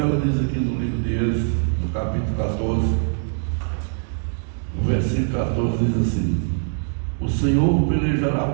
ela diz aqui no livro de Êxodo, no capítulo 14, no versículo 14, diz assim: o Senhor pelejará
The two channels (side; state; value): left; silent; 64 dB below the other